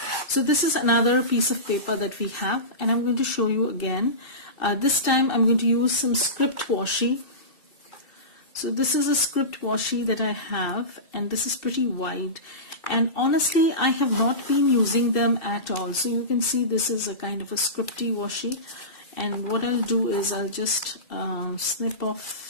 so this is another piece of paper that we have, and I'm going to show you again. This time I'm going to use some script washi. So this is a script washi that I have, and this is pretty wide, and honestly I have not been using them at all. So you can see this is a kind of a scripty washi, and what I'll do is I'll just snip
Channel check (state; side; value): late; right; 2.6 ms